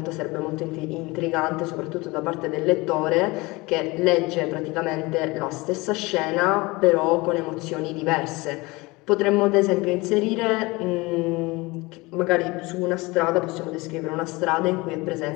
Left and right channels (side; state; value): right; quieter; 23.3 dB